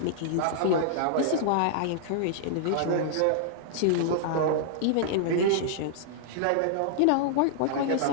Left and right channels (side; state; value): both; different; correlation -0.01